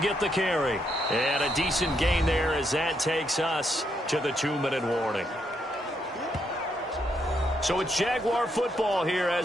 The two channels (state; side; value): normal; both; correlation 0.77